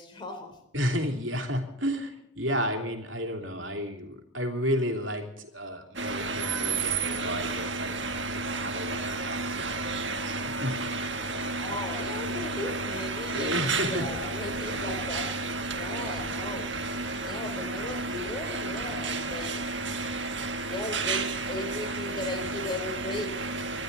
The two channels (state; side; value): normal; both; correlation 0.16